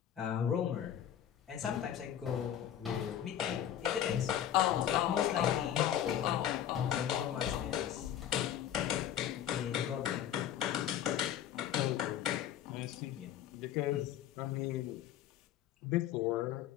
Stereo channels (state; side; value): quieter; right; 10.6 dB